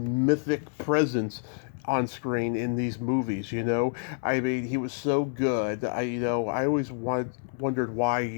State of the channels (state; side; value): silent; right; digital silence